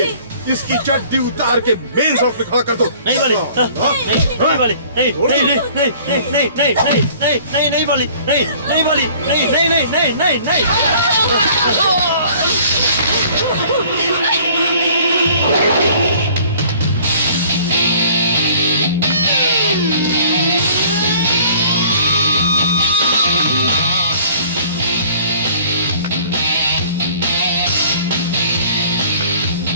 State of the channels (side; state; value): both; inverted; correlation -0.53